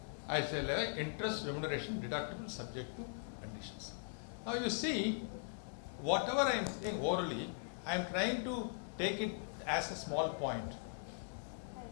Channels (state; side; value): silent; right; digital silence